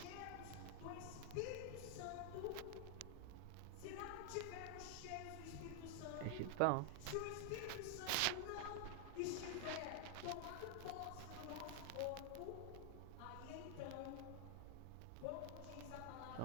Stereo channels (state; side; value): different; both; correlation 0.00